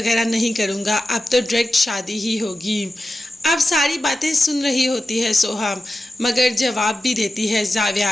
नहीं करूँगा, अब तो डायरेक्ट शादी ही होगी। अब सारी बातें सुन रही होती है सोहा, मगर जवाब भी देती है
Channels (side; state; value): both; normal; correlation 0.93